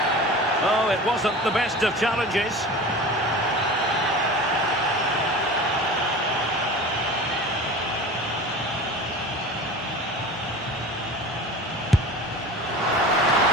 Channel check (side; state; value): both; normal; correlation 0.36